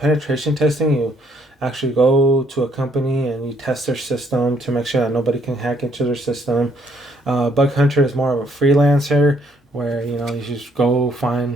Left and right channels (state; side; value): normal; both; correlation 0.67